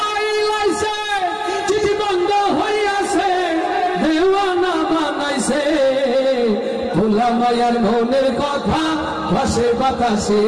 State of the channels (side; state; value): both; identical; correlation 1.00